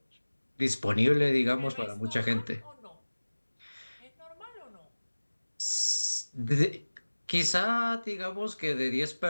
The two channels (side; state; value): both; inverted; correlation -1.00